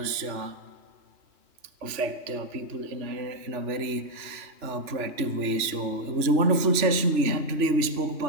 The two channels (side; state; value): left; late; 3.4 ms